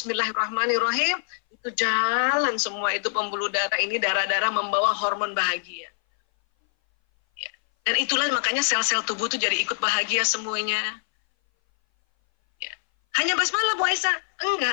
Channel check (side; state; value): right; silent; 59 dB below the other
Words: itu jalan semua itu pembuluh darah ini, darah-darah membawa hormon bahagia. Dan itulah makanya sel-sel tubuh itu jadi ikut bahagia semuanya. Ya. Hanya basmalah Bu Aisyah?